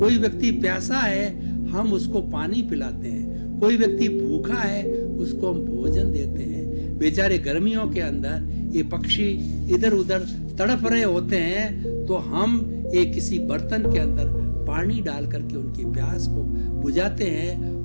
व्यक्ति प्यासा है, हम उसको पानी पिलाते हैं। कोई व्यक्ति भूखा है, उसको हम भोजन देते हैं। बेचारे गर्मियों के अंदर ये पक्षी इधर उधर तड़प रहे होते हैं, तो हम एक किसी बर्तन के अंदर पानी डाल करके उनकी प्यास को बुझाते हैं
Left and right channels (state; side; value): inverted; both; correlation -1.00